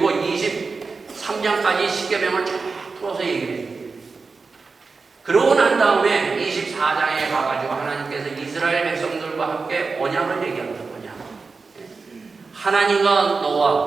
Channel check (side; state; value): left; quieter; 4.4 dB